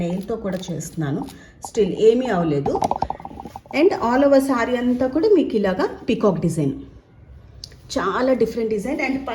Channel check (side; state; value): both; identical; correlation 1.00